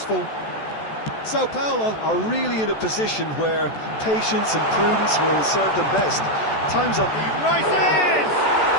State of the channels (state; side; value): late; right; 14 ms